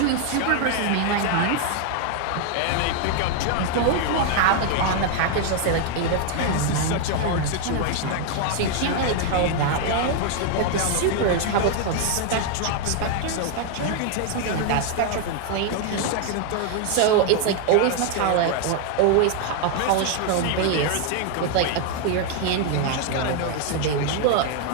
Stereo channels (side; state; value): both; different; correlation 0.00